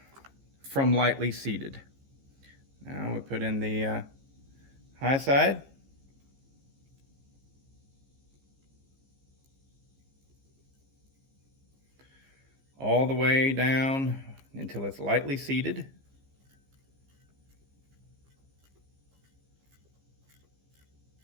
from lightly seated. Now we put in the high side. All the way down until it's lightly seated.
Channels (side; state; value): left; late; 15 ms